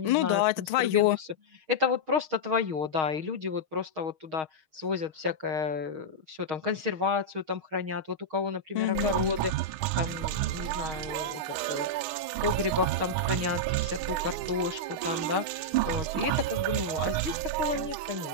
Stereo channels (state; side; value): late; left; 6.4 ms